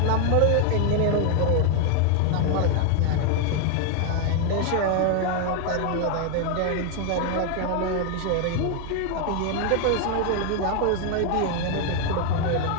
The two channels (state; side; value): different; both; correlation 0.01